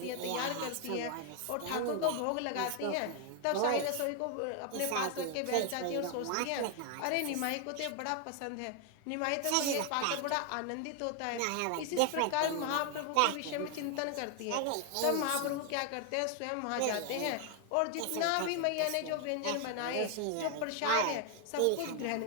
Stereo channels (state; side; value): different; both; correlation 0.00